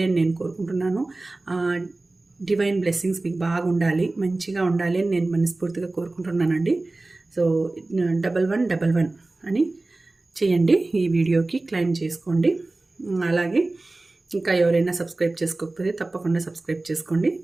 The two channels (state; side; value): quieter; left; 3.1 dB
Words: అని నేను కోరుకుంటున్నాను. డివైన్ బ్లెస్సింగ్స్ మీకు బాగా ఉండాలి, మంచిగా ఉండాలి అని నేను మనస్ఫూర్తిగా కోరుకుంటున్నానండి. సో 11 అని చేయండి. ఈ వీడియోకి క్లెయిమ్ చేసుకోండి. అలాగే ఇంకా ఎవరైనా సబ్స్క్రైబ్ చేసుకోకపోతే తప్పకుండా సబ్స్క్రైబ్ చేసుకోండి.